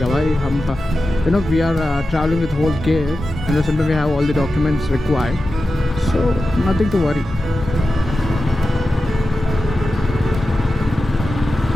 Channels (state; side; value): normal; both; correlation 0.93